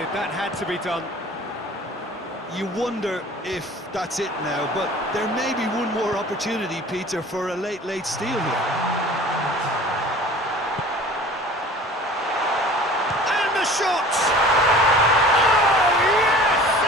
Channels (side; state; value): both; normal; correlation 0.44